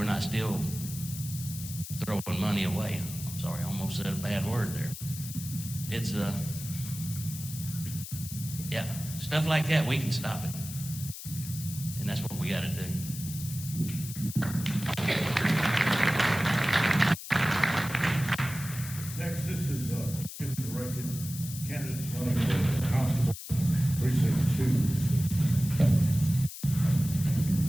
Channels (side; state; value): left; noise; hiss, 11 dB below the sound